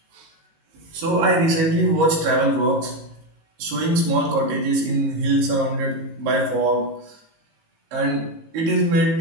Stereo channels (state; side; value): late; left; 19 ms